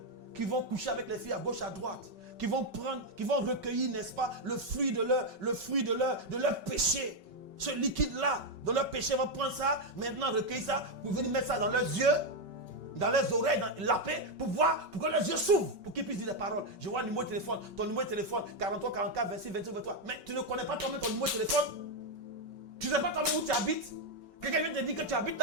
qui vont coucher avec les filles à gauche, à droite, qui vont recueillir, n'est-ce pas, le fruit de leur péché. Ce liquide-là, de leur péché, vont prendre ça, maintenant recueillir ça, pour venir mettre ça dans leurs yeux, dans leurs oreilles, dans la paix, pour voir, pour que leurs yeux s'ouvrent, pour qu'ils puissent dire des paroles. Je vois le numéro de téléphone, ton numéro de téléphone, 43, 44, 26, 28, 23. Mais tu ne connais pas toi-même ton numéro de téléphone. Tu ne sais pas toi-même où tu habites. Quelqu'un vient te dire que tu habites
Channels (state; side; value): late; left; 5.3 ms